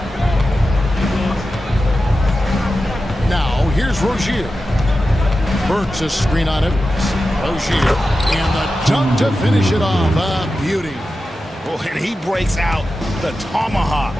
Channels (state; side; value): normal; both; correlation 0.92